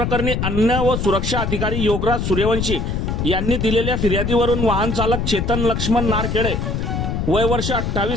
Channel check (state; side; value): noise; left; rumble, 1 dB below the sound